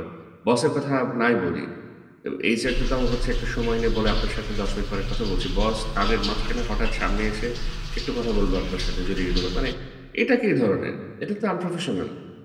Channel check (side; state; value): both; identical; correlation 1.00